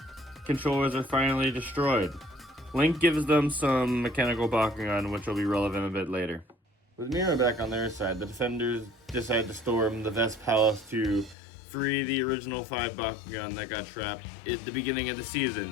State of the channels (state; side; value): drops out; right; at 11.4 s